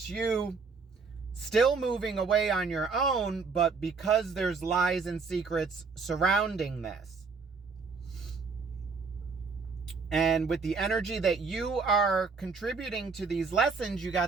you still moving away on your own, but because there's lies and secrets surrounding this. And with the energy that you are contributing to these lessons, you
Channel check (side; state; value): left; quieter; 4.8 dB